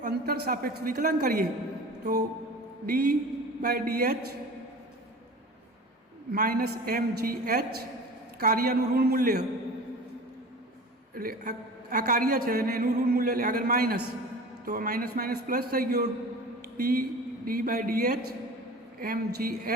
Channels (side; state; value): both; normal; correlation 0.38